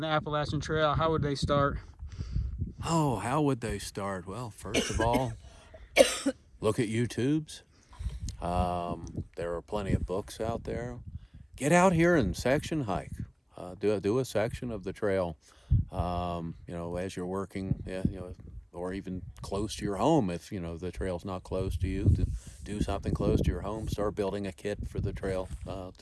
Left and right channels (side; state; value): both; identical; correlation 1.00